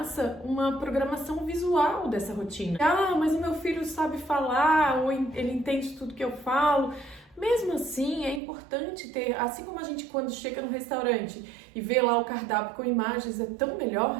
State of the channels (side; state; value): left; drops out; at 8.4 s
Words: uma programação visual dessa rotina. Ah, mas o meu filho sabe falar, ou ele entende tudo que eu falo. Mesmo assim, é importante ter, assim como a gente quando chega no restaurante e vê lá o cardápio com imagens, é tão